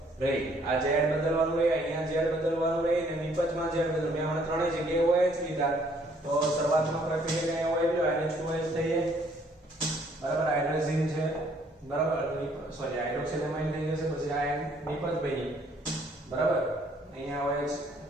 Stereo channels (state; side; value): normal; both; correlation 0.63